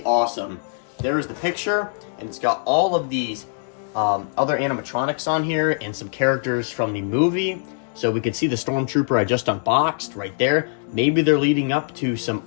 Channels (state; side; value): silent; right; digital silence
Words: awesome. There is the picture, and it's got all of these other animatronics on here and some characters from the movie. So we can see the Stormtrooper I just unboxed right there. Maybe they're leading up to some